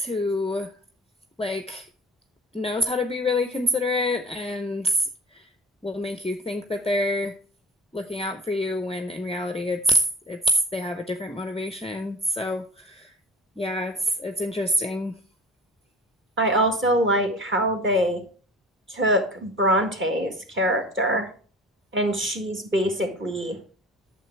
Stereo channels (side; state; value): both; normal; correlation 0.43